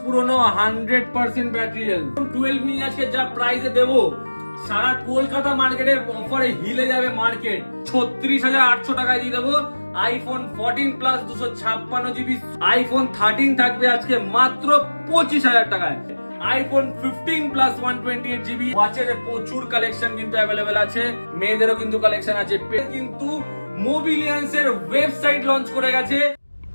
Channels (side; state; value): both; inverted; correlation -1.00